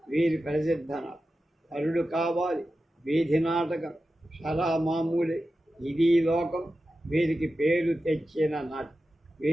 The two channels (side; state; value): both; normal; correlation 0.92